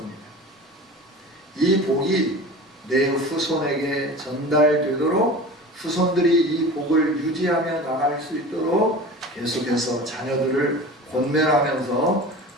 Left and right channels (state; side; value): normal; both; correlation 0.36